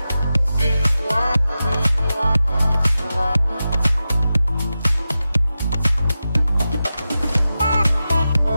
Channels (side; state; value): both; inverted; correlation -0.92